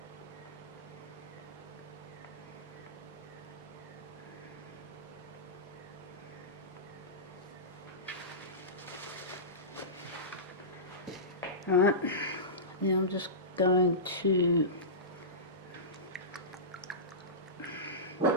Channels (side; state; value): both; normal; correlation -0.20